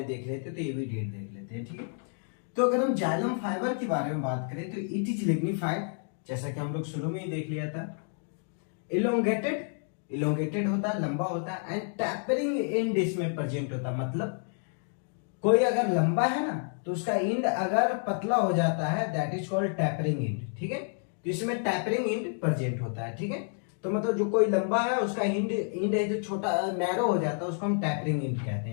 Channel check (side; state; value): right; silent; 56 dB below the other